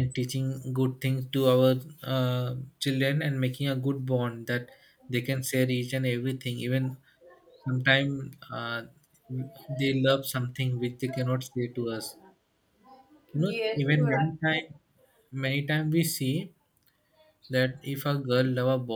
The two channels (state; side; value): identical; both; correlation 1.00